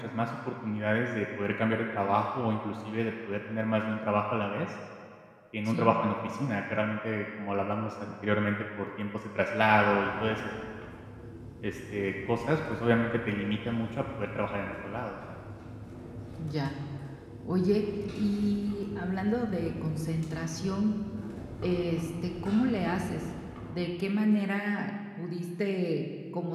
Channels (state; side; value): identical; both; correlation 1.00